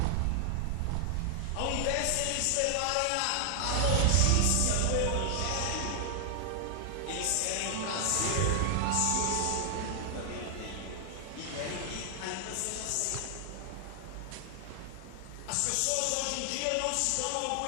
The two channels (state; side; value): different; both; correlation 0.00